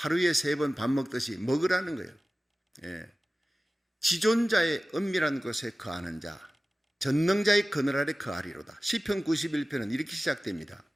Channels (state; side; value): normal; both; correlation 0.96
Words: 3번 밥 먹듯이 먹으라는 거예요. 지존자의 은밀한 곳에 거하는 자, 전능자의 그늘 아래 거하리로다. 시편 91편은 이렇게 시작됩니다.